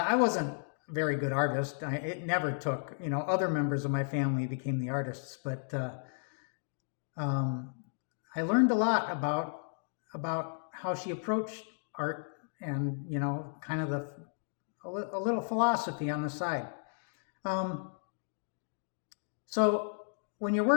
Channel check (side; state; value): right; silent; digital silence